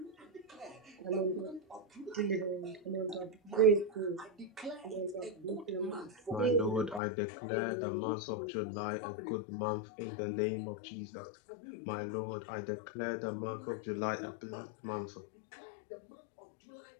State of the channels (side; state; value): right; drops out; at 7.0 s